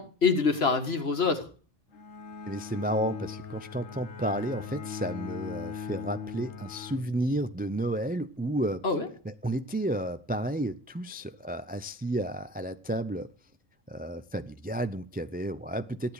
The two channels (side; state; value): both; normal; correlation 0.40